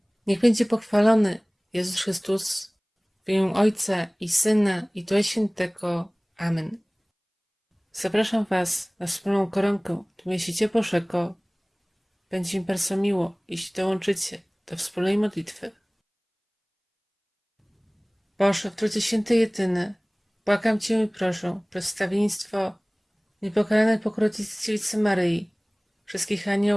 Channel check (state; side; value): identical; both; correlation 1.00